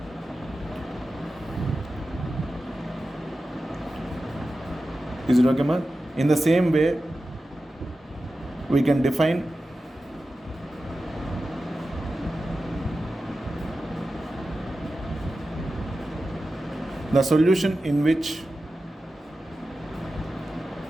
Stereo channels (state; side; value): normal; both; correlation 0.93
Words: Is it okay, ma? In the same way, we can define the solution in which